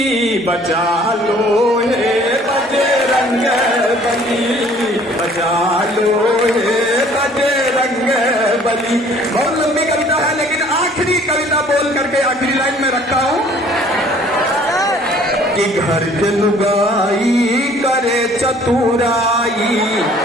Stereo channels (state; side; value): normal; both; correlation 0.56